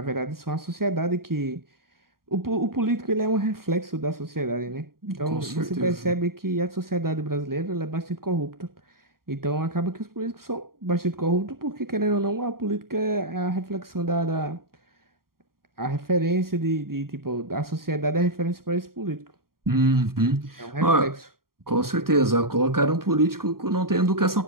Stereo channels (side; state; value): left; late; 0.93 ms